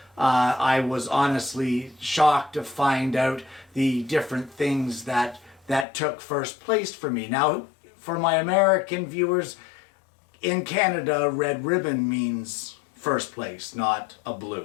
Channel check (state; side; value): drops out; right; at 5.9 s